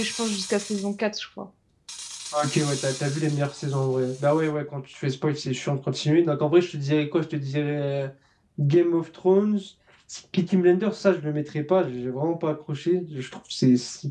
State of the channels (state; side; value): identical; both; correlation 1.00